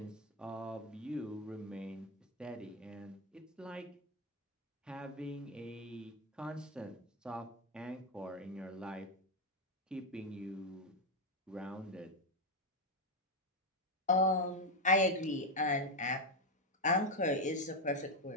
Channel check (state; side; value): normal; both; correlation 0.05